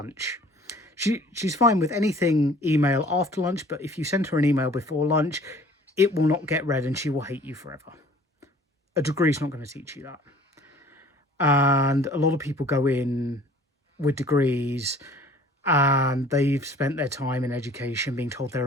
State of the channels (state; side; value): normal; both; correlation 0.51